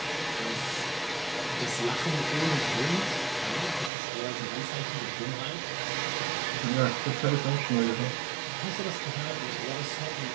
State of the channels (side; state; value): left; drops out; at 3.9 s